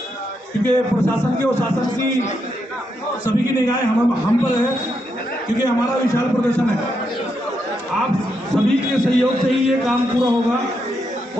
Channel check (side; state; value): both; normal; correlation 0.81